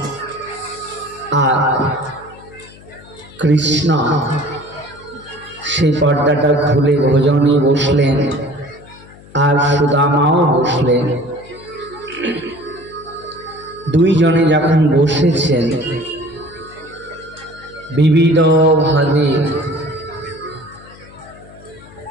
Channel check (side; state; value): left; noise; hum, 22 dB below the sound